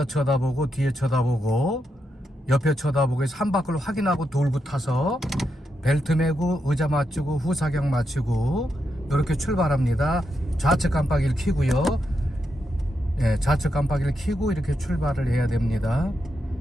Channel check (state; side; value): normal; both; correlation 0.84